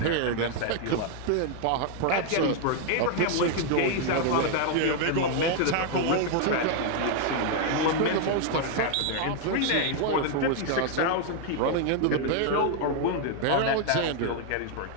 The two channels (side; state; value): both; different; correlation 0.00